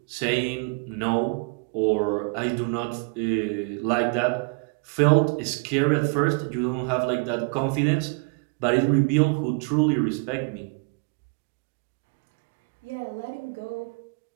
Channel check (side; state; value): left; quieter; 32.9 dB